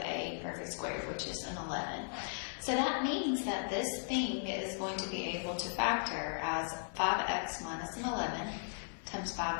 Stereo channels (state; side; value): silent; right; 53 dB below the other